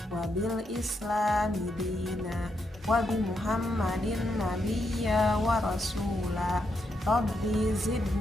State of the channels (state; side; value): normal; both; correlation 0.81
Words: wa bil islami dina wa bi muhammadin nabiyya wa rasula. Rabbi